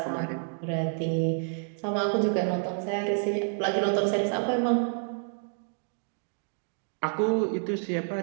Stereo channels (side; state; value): left; silent; 59 dB below the other